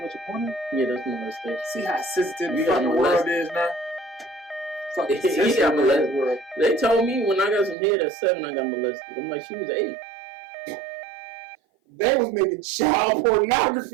watch a porno? Yeah, that's molestation. See how sensitive the fucking world is now? Fucking sensitive world. They told me when I got some head at 7, I got molested. I'm like, she was 8. They was making child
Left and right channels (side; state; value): left; drops out; at 7.8 s